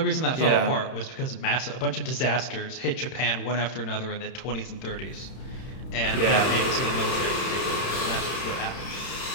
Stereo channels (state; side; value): late; right; 31 ms